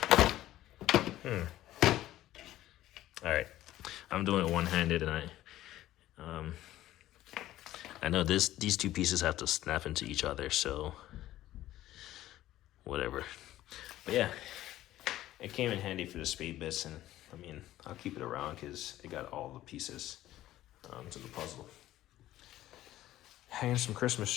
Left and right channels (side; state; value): right; quieter; 14.4 dB